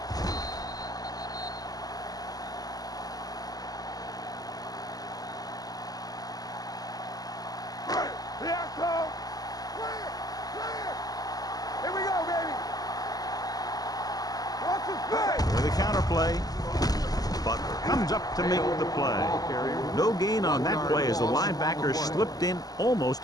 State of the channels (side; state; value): right; late; 0.18 ms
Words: With a counter play, Butler comes up to make the play. No gain on that play as the linebacker slipped in almost